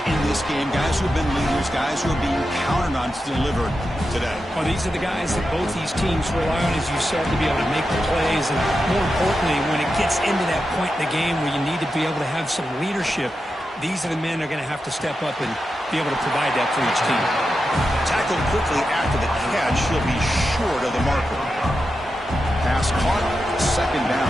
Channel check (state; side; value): normal; both; correlation 0.89